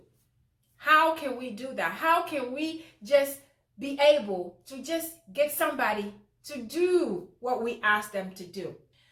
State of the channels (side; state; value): both; identical; correlation 1.00